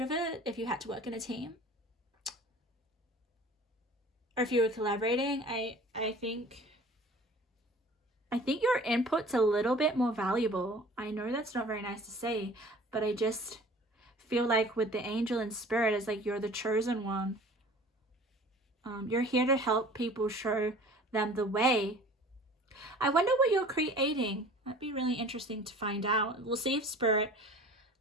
it if you had to work in a team. Or if you were collaborating, I think your input's a little bit more valuable. I know that's not very nice to say, but I just feel like with the angel and spirit, it's like you're the chosen one. You're here to help people, show them the way. I wonder what you're creating. That'd be really interesting to find out. We'll see if spirit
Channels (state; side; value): normal; both; correlation 0.45